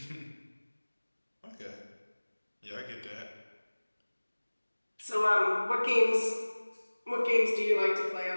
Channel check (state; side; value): inverted; both; correlation -1.00